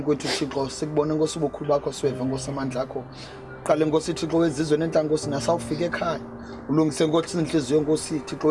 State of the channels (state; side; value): identical; both; correlation 1.00